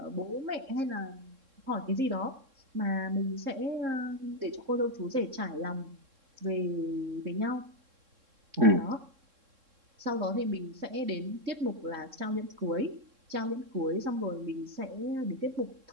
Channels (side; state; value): left; late; 3.7 ms